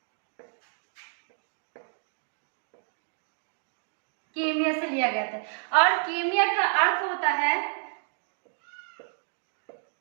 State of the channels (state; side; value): silent; left; 58 dB below the other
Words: कीमिया से लिया गया था और कीमिया का अर्थ होता है